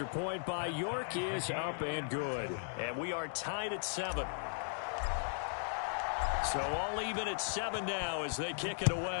point by York is up and good. And we are tied at 7. So all even at 7 now as they kick it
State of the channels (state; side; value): silent; right; digital silence